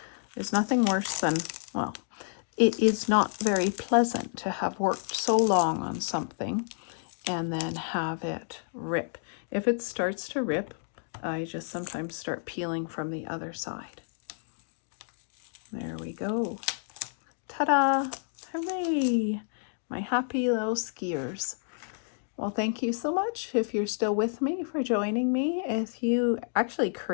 There's nothing worse than, well, it is not very pleasant to have worked so long on something and then have it rip. If it starts to rip, I just sometimes start peeling from the other side. There we go. Ta-da! Hooray! My happy little skiers. Well, thank you so much if you're still with me, for joining me. If you actually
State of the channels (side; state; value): right; silent; digital silence